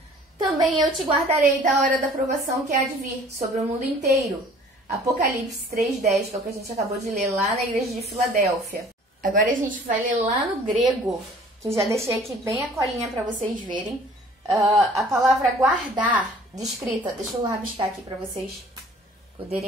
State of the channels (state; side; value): normal; both; correlation 0.51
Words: também eu te guardarei da hora da provação que há de vir sobre o mundo inteiro. Apocalipse 3:10, que é o que a gente acabou de ler lá na igreja de Filadélfia. Agora a gente vai ler lá no grego, que eu já deixei aqui bem a colinha para vocês verem. A palavra guardar, descrita, deixa eu rabiscar aqui para vocês